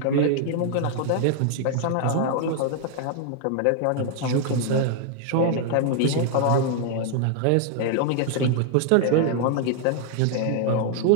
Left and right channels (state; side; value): different; both; correlation 0.00